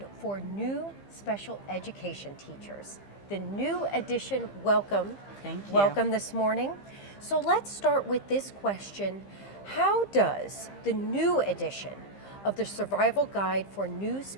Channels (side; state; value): right; late; 15 ms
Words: for New Special Education Teachers. The new edition, welcome. Thank you. Welcome this morning. So let's start with this question. How does the new edition of the Survival Guide for New